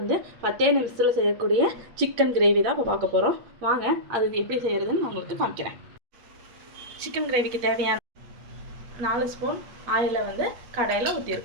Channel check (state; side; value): late; left; 8.1 ms